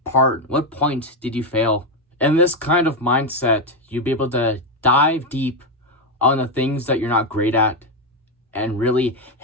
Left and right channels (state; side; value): normal; both; correlation 0.07